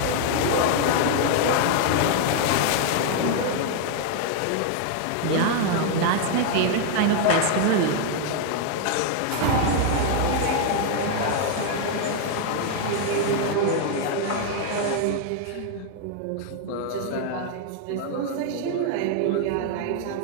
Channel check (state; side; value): different; both; correlation 0.00